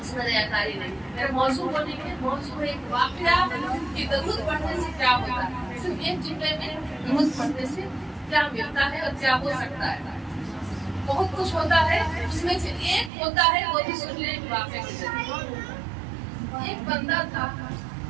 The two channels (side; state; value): left; drops out; at 13.1 s